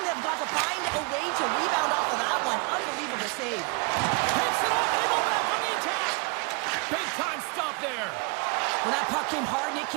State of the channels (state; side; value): quieter; left; 30.4 dB